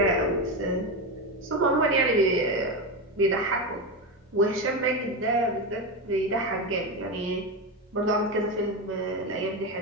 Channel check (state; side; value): normal; both; correlation 0.15